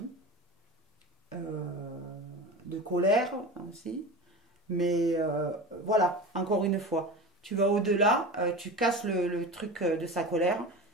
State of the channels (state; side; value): normal; both; correlation 0.30